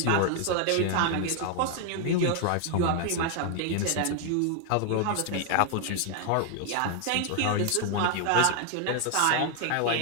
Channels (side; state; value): both; different; correlation 0.00